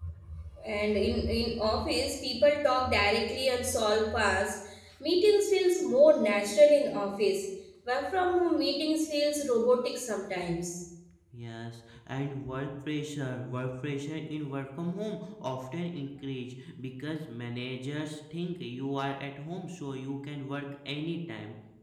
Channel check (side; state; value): both; identical; correlation 1.00